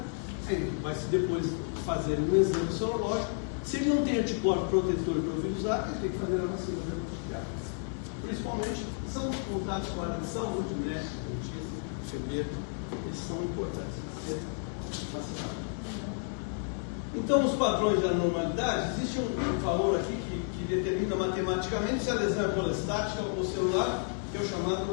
aí vai se depois fazer um exame sorológico. Se ele não tem anticorpo protetor para o vírus A, ele tem que fazer a vacina da hepatite A. Principalmente, são os contatos com a área de saúde, médico, dentista, enfermeiro, eles são importantes para ser vacinados. Então, os padrões da normalidade, existe um valor aqui que determina matematicamente se a lesão é colestática ou celular, que é o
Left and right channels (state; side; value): silent; right; 57 dB below the other